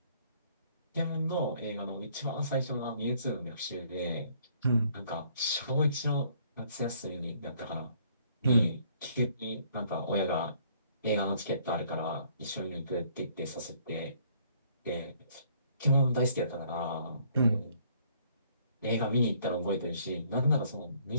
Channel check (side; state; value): both; inverted; correlation -0.63